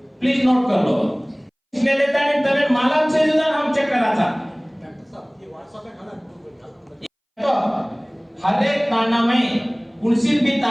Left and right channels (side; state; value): both; identical; correlation 1.00